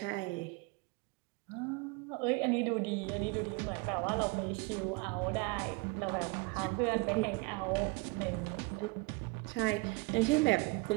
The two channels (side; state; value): left; quieter; 25.9 dB